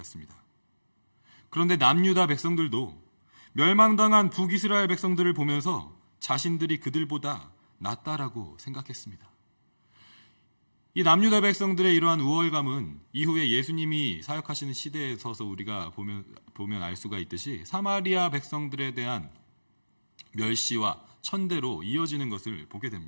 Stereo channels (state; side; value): inverted; both; correlation -1.00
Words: 그런데 남유다 백성들도 멸망당한 북이스라엘 백성들을 보면서 자신들이 그들보다 낫다라고 생각했습니다. 이 남유다 백성들의 이러한 우월감은 이후에 예수님이 사역하시는 시대에 서서 우리가 보면 알 수가 있듯이 사마리아 백성들에 대한 멸시와 천대로 이어지는 것을 보게